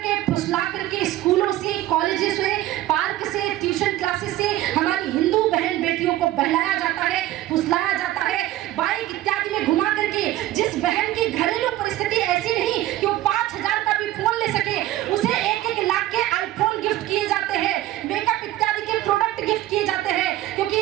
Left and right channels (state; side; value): quieter; left; 14.8 dB